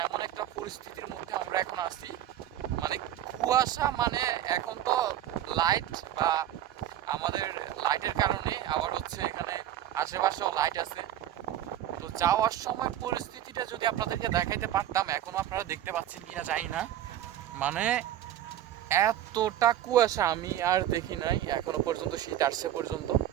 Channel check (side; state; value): left; quieter; 12.0 dB